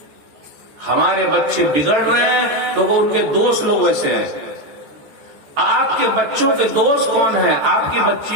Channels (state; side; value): late; left; 14 ms